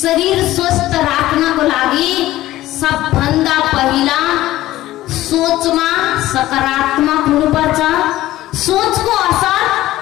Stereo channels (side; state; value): right; quieter; 15.5 dB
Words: स्वस्थ राख्नको लागि सबभन्दा पहिला सोचमा सकारात्मक हुनुपर्छ। सोचको असर